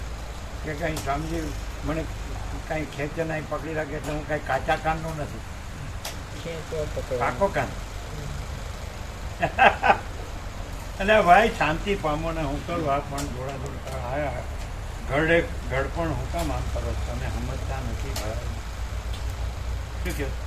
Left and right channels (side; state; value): both; identical; correlation 1.00